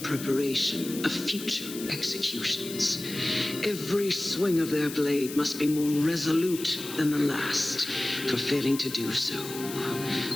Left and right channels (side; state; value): left; noise; hiss, 11 dB below the sound